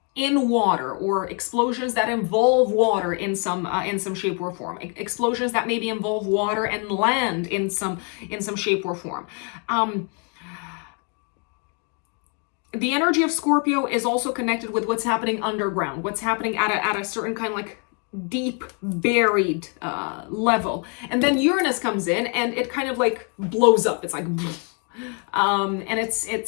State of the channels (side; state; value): right; quieter; 38.1 dB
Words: in water, or explosions that involve water in some shape or form. Explosions that maybe involve water and land in some shape or form. The energy of Scorpio is also connected with what's happening underground, what's happening at a certain kind of like deep buried level, and then Uranus comes in and it kind of like blows up. It's like and